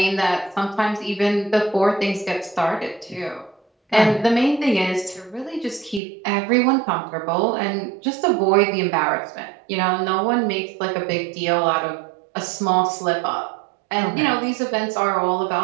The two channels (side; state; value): left; drops out; at 6.0 s